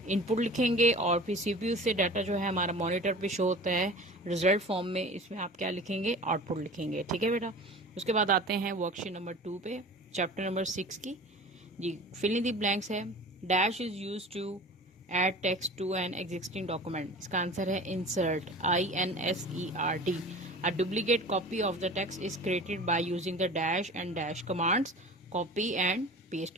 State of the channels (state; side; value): normal; both; correlation 0.39